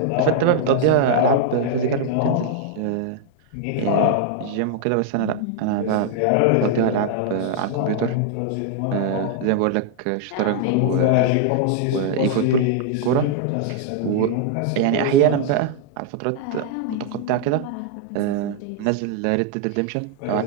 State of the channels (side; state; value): both; different; correlation 0.00